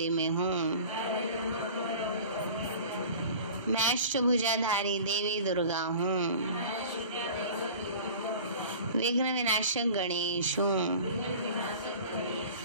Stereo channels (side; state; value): both; inverted; correlation -0.41